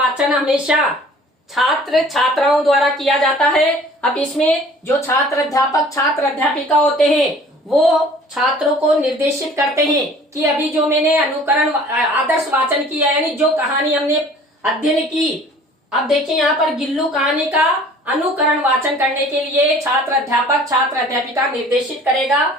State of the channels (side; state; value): both; normal; correlation 0.50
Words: हमेशा छात्र छात्राओं द्वारा किया जाता है। अब इसमें जो छात्र अध्यापक, छात्र अध्यापिका होते हैं वो छात्रों को निर्देशित करते हैं कि अभी जो मैंने अनुकरण आदर्श वाचन किया, यानी जो कहानी हमने अध्ययन की, अब देखिए यहाँ पर गिल्लू कहानी का अनुकरण वाचन करने के लिए छात्र अध्यापक छात्र अध्यापिका निर्देशित